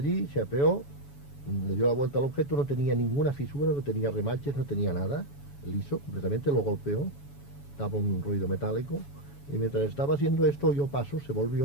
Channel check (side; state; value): right; late; 7.1 ms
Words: se apeó, le dio la vuelta al objeto, no tenía ninguna fisura, no tenía remaches, no tenía nada, liso, completamente, lo golpeó, daba un ruido metálico, y mientras estaba haciendo esto oyó pasos, se